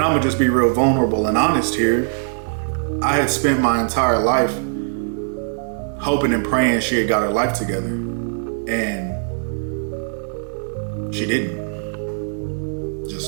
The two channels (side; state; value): left; silent; digital silence